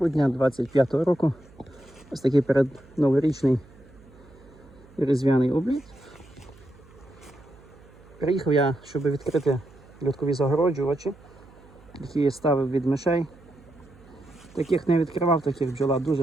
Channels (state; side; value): noise; right; hum, 24 dB below the sound